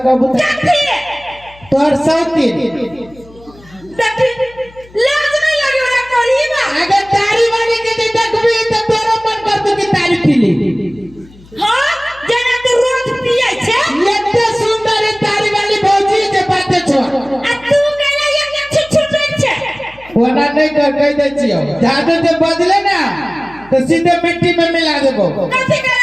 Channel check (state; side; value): noise; left; hum, 24 dB below the sound